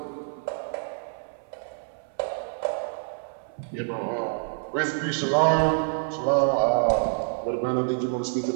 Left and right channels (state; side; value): silent; left; 60 dB below the other